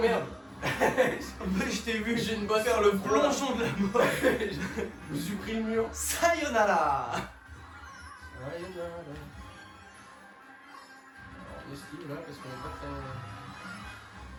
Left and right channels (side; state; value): both; identical; correlation 1.00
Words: merde. Je t'ai vu J'ai une bosse faire le plongeon de la mort. Je me suis pris le mur. Sayonara. Sayonara. On esquive là parce qu'on est pas très.